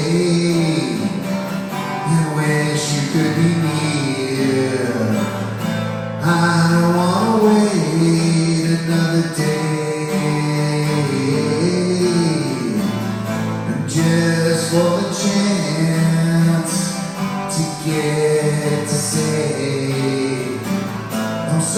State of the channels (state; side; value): identical; both; correlation 1.00